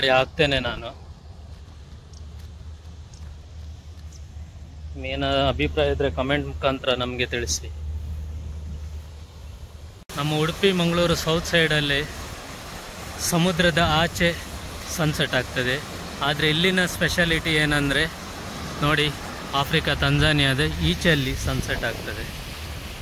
ಹಾಕ್ತೇನೆ ನಾನು. ಏನ ಅಭಿಪ್ರಾಯ ಇದ್ದರೆ ಕಮೆಂಟ್ ಮುಖಾಂತರ ನಮಗೆ ತಿಳಿಸಿ. ನಮ್ಮ ಉಡುಪಿ ಮಂಗಳೂರು ಸೌತ್ ಸೈಡಲ್ಲಿ ಸಮುದ್ರದ ಆಚೆ ಸನ್ಸೆಟ್ ಆಗ್ತದೆ. ಆದರೆ ಇಲ್ಲಿನ ಸ್ಪೆಷಾಲಿಟಿ ಏನಂದರೆ ನೋಡಿ, ಆಫ್ರಿಕಾ ತಂಜಾನಿಯಾದ ಈಚೆಯಲ್ಲಿ ಸನ್ಸೆಟ್ ಆಗ್ತದೆ.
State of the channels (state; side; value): identical; both; correlation 1.00